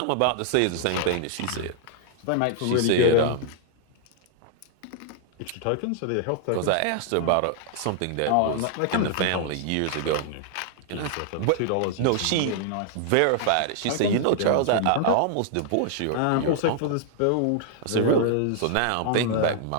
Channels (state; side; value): different; both; correlation 0.00